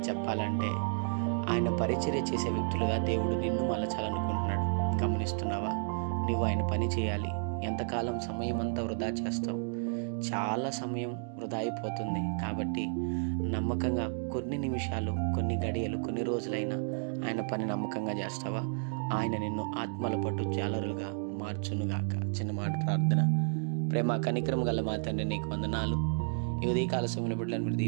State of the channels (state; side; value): silent; left; 57 dB below the other